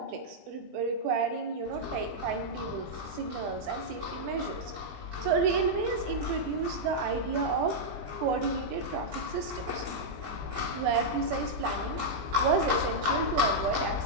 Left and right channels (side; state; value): left; late; 20 ms